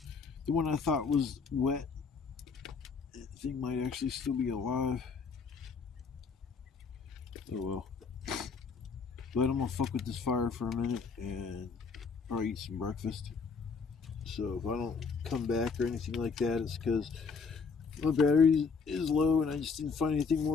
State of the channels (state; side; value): quieter; right; 5.2 dB